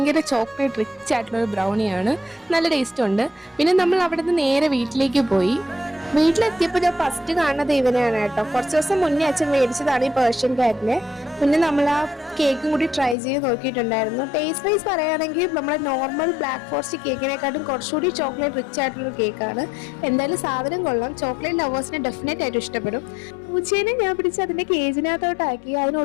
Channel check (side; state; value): right; drops out; at 13.2 s